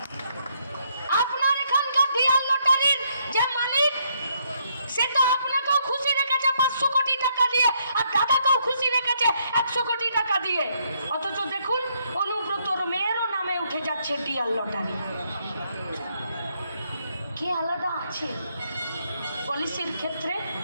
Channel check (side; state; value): both; inverted; correlation -0.73